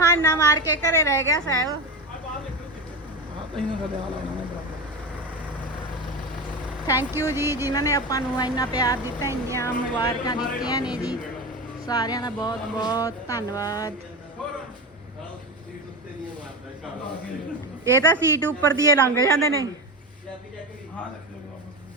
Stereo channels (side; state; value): both; normal; correlation 0.21